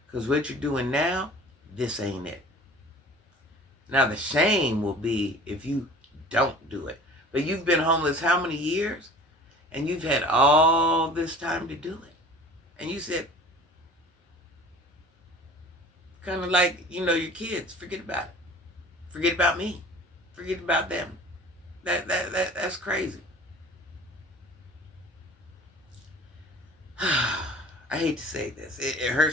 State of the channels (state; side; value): normal; both; correlation 0.44